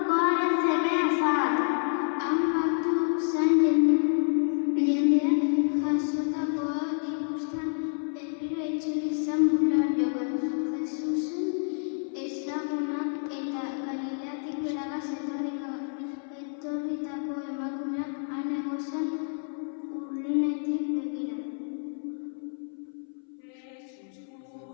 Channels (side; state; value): right; silent; 59 dB below the other